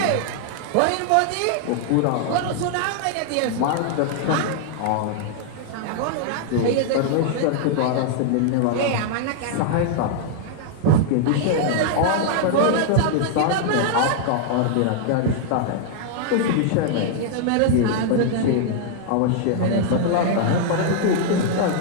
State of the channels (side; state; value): both; different; correlation -0.01